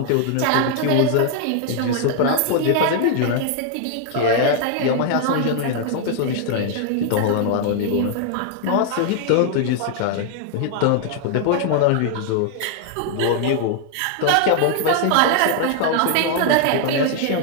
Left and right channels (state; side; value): different; both; correlation 0.00